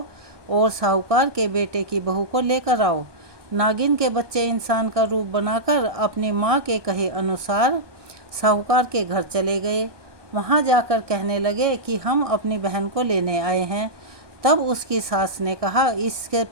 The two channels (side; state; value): left; late; 1.6 ms